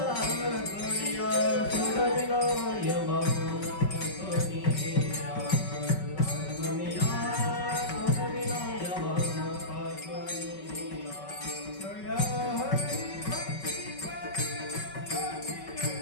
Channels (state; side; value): late; right; 5.3 ms